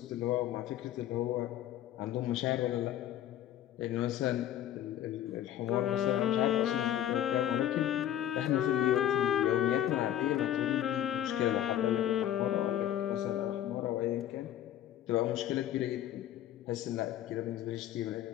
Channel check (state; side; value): quieter; right; 11.5 dB